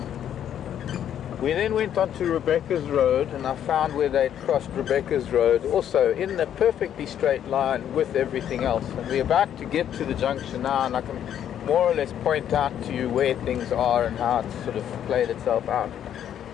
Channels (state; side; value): quieter; right; 10.0 dB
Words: We then went on to Rebecca's Road, and I found where they'd crossed Rebecca's Road, also in a perfectly straight line with everything else. And we're about to get to the junction now, and I can more or less point out to you where things are and how it's sort of played itself out.